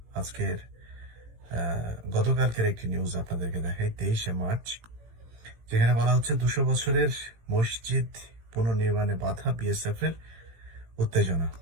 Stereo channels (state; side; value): late; left; 18 ms